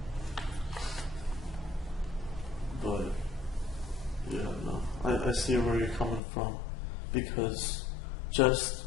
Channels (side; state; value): right; drops out; at 6.2 s